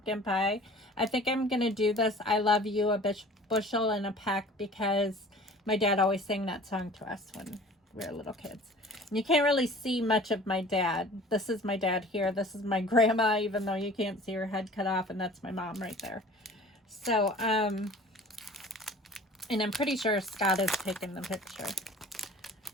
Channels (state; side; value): normal; both; correlation 0.45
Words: pie, I think I'm going to do this I love you a bushel and a peck, because my dad always sang that song to us when we were little kids. And you can't really see much of my dad. This is my dad here. This is my grandma, even though you can't see her head cut off. And that's my mom right there. So, and I'm pretty sure Scott has taken the picture.